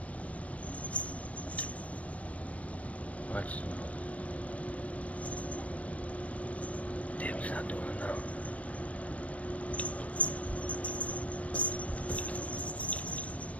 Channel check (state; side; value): late; right; 0.066 ms